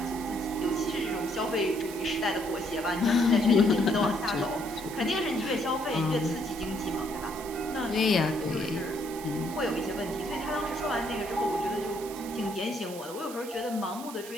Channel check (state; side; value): noise; right; hiss, 14 dB below the sound